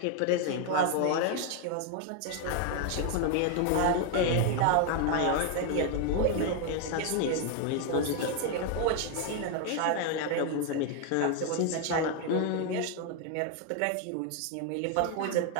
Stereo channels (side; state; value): both; different; correlation 0.00